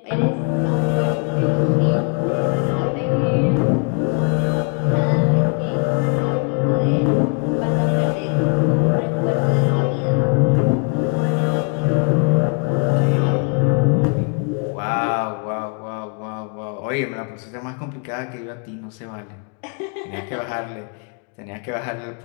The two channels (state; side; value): quieter; right; 36.2 dB